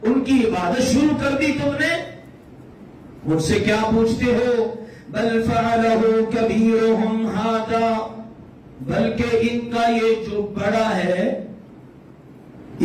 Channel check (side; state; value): both; identical; correlation 1.00